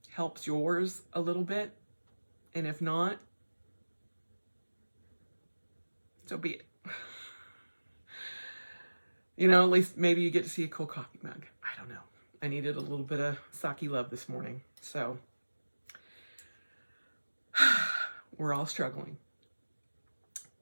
helps yours a little bit. And if not, so be it. You know, at least maybe you get to see a cool coffee mug. I don't know. I needed a little bit of sake love this morning. So we're all struggling.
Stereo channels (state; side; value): inverted; both; correlation -1.00